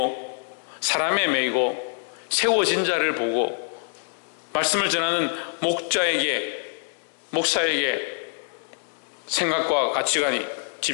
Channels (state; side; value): silent; right; digital silence